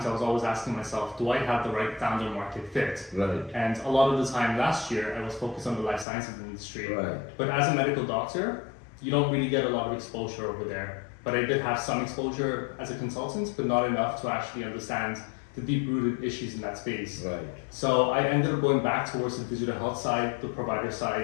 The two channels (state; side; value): drops out; right; at 6.1 s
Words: I was always asking myself, do I have the right founder market fit? Right. And a lot of the time last year, I was focused on the life sciences industry. Right. But as a medical doctor, you don't really get a lot of exposure over there. But I did have some exposure as a consultant, but not enough to actually understand the deep-rooted issues in that space. Right. So I ended up going back towards the digital health side, the provider